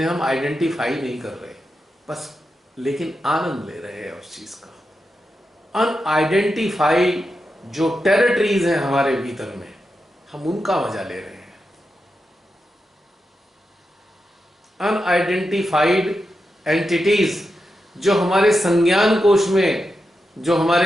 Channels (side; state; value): both; normal; correlation 0.88